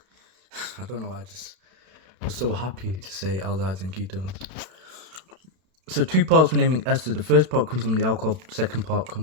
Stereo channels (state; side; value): late; left; 32 ms